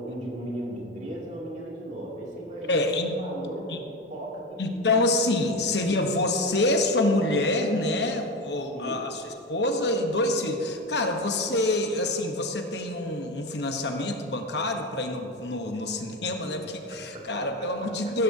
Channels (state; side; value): normal; both; correlation 0.21